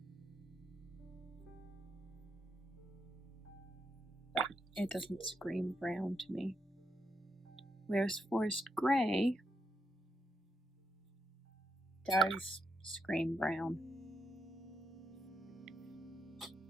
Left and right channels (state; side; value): normal; both; correlation 0.81